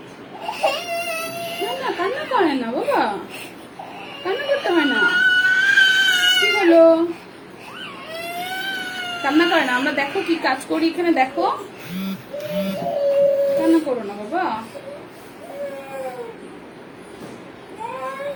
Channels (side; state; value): both; identical; correlation 1.00